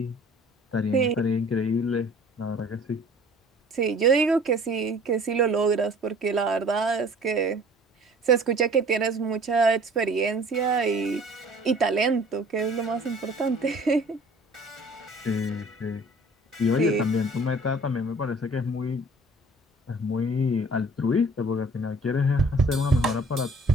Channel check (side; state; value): both; normal; correlation 0.51